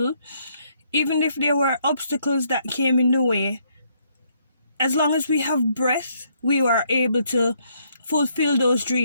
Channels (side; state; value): both; inverted; correlation -0.71